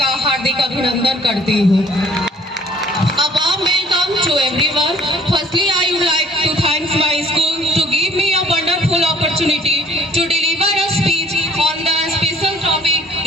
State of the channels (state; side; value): normal; both; correlation 0.56